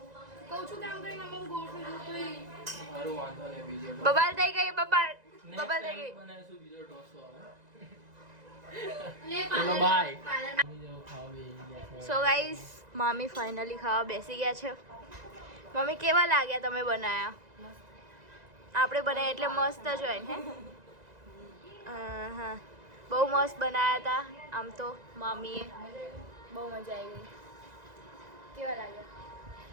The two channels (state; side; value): late; left; 2.0 ms